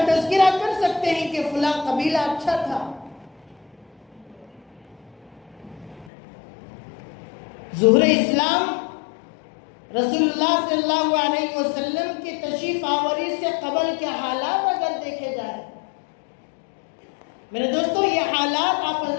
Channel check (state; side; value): drops out; right; at 6.1 s